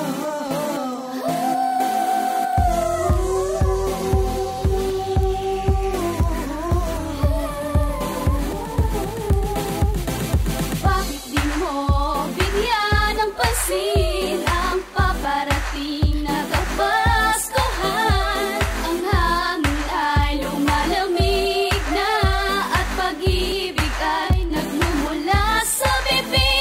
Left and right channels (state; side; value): identical; both; correlation 1.00